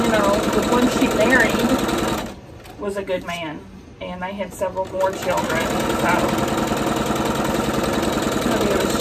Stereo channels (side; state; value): both; identical; correlation 1.00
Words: know, the one she married was a good man, and they had several more children, so maybe it was